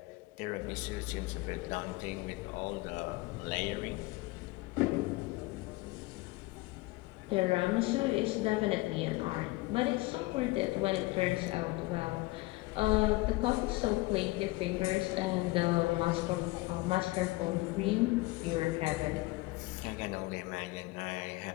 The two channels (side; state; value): right; quieter; 21.9 dB